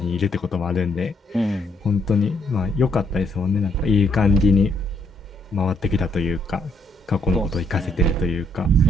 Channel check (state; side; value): normal; both; correlation 0.72